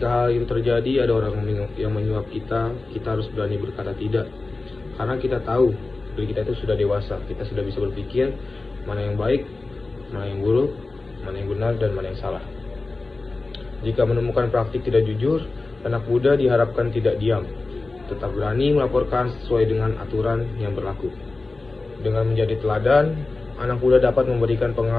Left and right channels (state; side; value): quieter; right; 3.4 dB